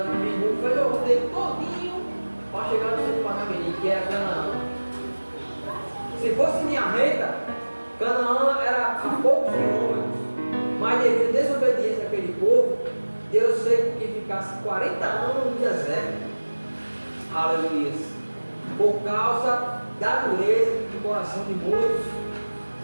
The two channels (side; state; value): both; inverted; correlation -1.00